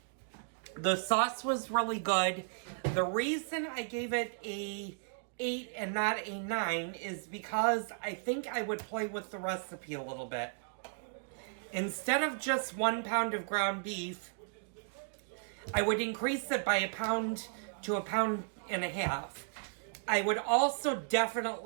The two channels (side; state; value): left; silent; digital silence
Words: The sauce was really good. The reason I gave it a 8 and not a 9 is because I think I would play with the recipe a little bit. Instead of just 1 pound of ground beef, I would increase it by 1 pound to 1.5 pounds. I would also